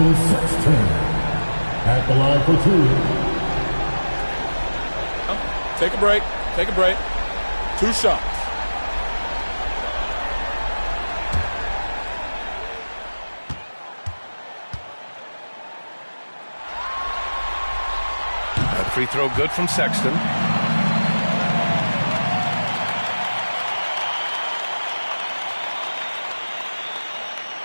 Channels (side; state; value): both; inverted; correlation -1.00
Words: Sexton. At the line for 2. Take a break. Take a break. 2 shots. Free throw good from Sexton.